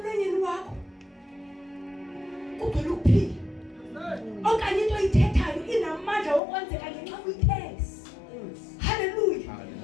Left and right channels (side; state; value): right; drops out; at 6.4 s